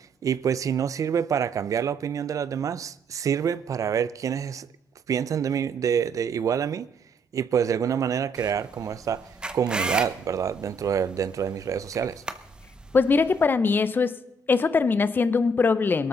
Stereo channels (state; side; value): normal; both; correlation 0.68